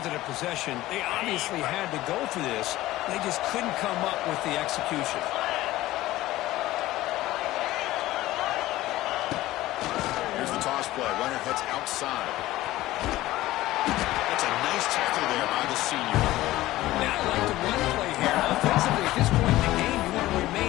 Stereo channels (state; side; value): quieter; right; 16.5 dB